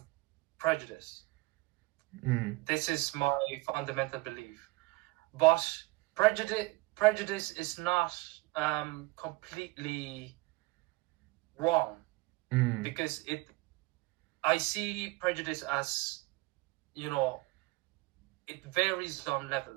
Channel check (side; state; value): left; quieter; 22.5 dB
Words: prejudice. This is my fundamental belief. But prejudice is not completely wrong, because I see prejudice as, it varies on